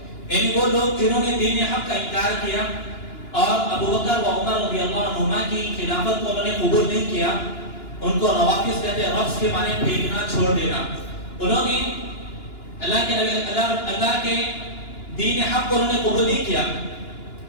یعنی وہ لوگ جنہوں نے دین حق کا انکار کیا اور ابو بکر و عمر رضی اللہ عنہما کی خلافت کو انہوں نے قبول نہیں کیا، ان کو روافض کہتے ہیں. رفض کے معنی پھینکنا، چھوڑ دینا. انہوں نے اللہ کے دین حق کو انہوں نے قبول نہیں کیا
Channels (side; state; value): right; late; 2.9 ms